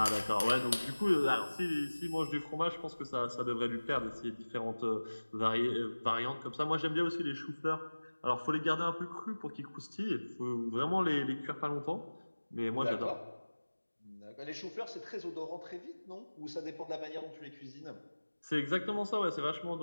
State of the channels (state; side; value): inverted; both; correlation -1.00